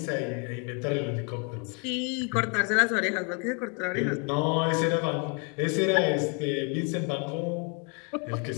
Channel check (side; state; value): right; quieter; 36.6 dB